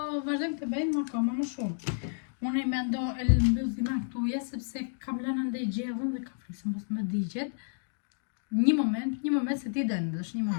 vazhdojmë të bëjmë akoma më shumë. Unë i mendo e mbyll dhima këtuja sepse kam lënë ndaj gjellën dhe ka frikë se mos më digjet. Një moment se ti dëndësh, një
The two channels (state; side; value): silent; right; digital silence